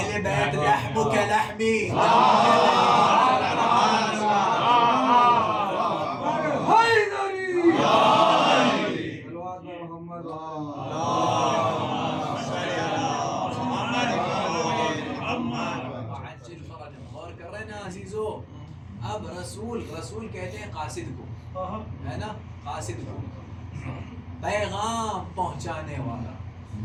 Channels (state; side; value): identical; both; correlation 1.00